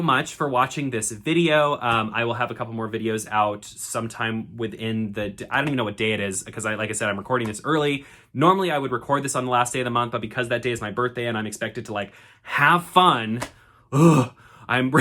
much for watching this video. I will have a couple more videos out sometime within I don't even know what day it is, because like I said, I'm recording this early. Normally I would record this on the last day of the month, but because that day is my birthday and I'm expected to like have fun, I'm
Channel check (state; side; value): identical; both; correlation 1.00